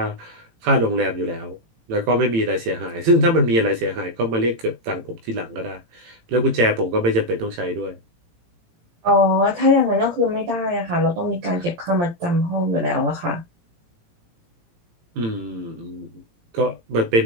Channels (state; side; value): late; left; 18 ms